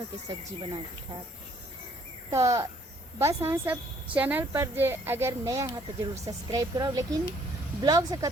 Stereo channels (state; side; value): normal; both; correlation 0.63